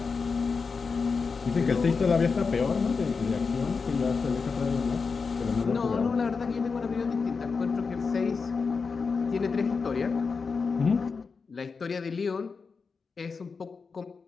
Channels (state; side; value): quieter; right; 5.0 dB